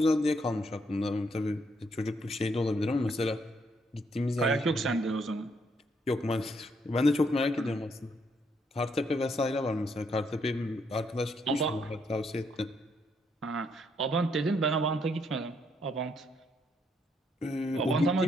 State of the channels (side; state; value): both; normal; correlation 0.73